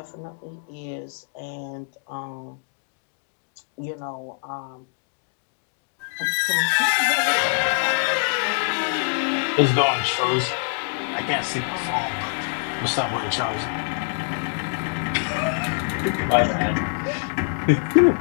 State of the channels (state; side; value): silent; right; digital silence